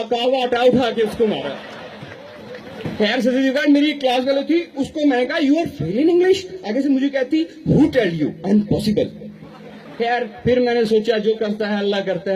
वाटा उठा के उसको मारा। खैर सदर मेरी एक क्लास वाली थी, उसको मैंने कहा you are fail in English, आगे से मुझे कहती हु टेल यू, अनपॉसिबल। खैर फिर मैंने सोचा जो करता है अल्लाह करता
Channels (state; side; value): identical; both; correlation 1.00